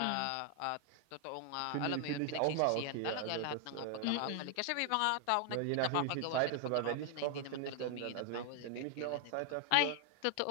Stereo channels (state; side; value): different; both; correlation 0.00